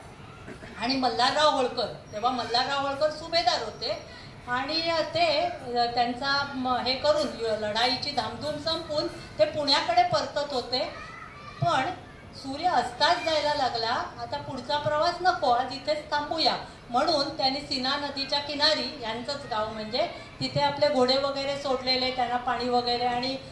आणि मल्हारराव होळकर, तेव्हा मल्हारराव होळकर सुभेदार होते आणि ते त्यांचा हे करून लढाईची धामधूम संपून ते पुण्याकडे परतत होते. पण सूर्य अस्ताच जायला लागला. आता पुढचा प्रवास नको, आज इथेच थांबूया म्हणून त्यांनी सीना नदीच्या किनारी, यांचंच गाव म्हणजे, तिथे आपले घोडे वगैरे सोडलेले, त्यांना पाणी वगैरे आणि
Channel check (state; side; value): identical; both; correlation 1.00